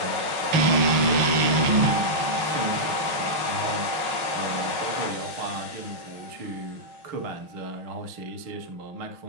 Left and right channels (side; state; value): left; late; 5.5 ms